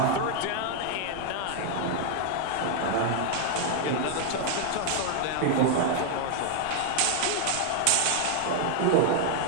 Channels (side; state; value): both; different; correlation 0.00